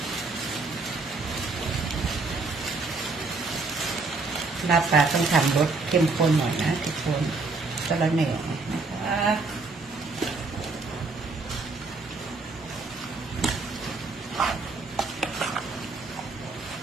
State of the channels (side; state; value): left; quieter; 3.8 dB